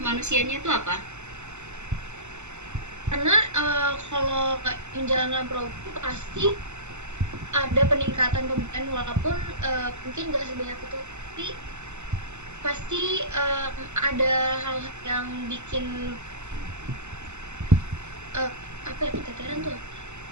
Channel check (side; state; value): left; late; 0.83 ms